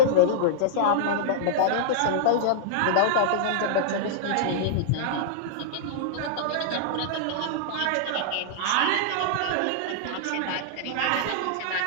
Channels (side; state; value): both; different; correlation -0.02